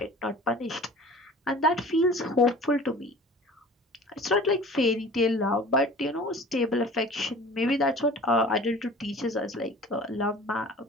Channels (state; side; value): normal; both; correlation 0.43